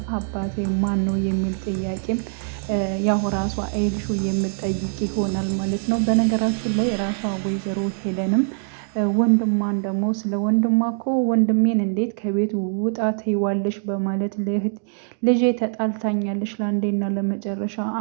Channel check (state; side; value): silent; left; digital silence